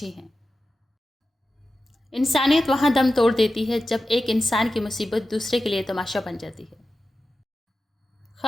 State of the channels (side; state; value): both; normal; correlation 0.93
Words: ہیں۔ انسانیت وہاں دم توڑ دیتی ہے جب ایک انسان کی مصیبت دوسرے کے لیے تماشا بن جاتی ہے۔